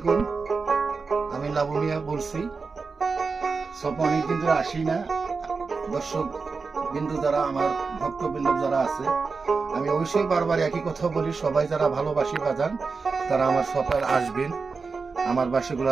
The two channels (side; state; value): left; quieter; 4.6 dB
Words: আমি লাবু মিয়া বলছি। সব অনেকদিন ধরে আসি না। দর্শক বিন্দু যারা, আমার ভক্তবৃন্দ যারা আছে, আমি অবশ্যই বারবার একই কথা বলি, সবাই যারা ভালোবাসি বাজান তারা আমার সবাই আসবেন, আমার